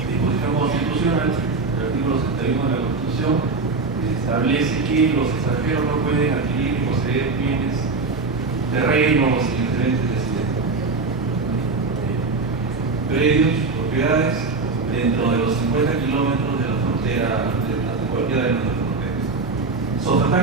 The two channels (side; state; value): left; quieter; 4.0 dB